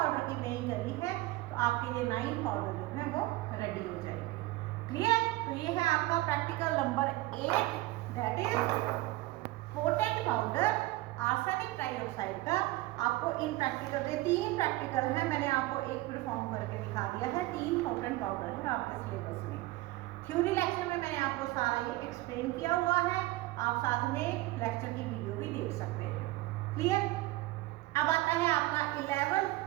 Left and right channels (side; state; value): left; quieter; 19.0 dB